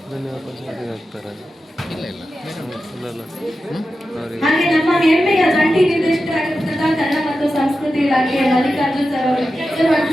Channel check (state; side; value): normal; both; correlation 0.91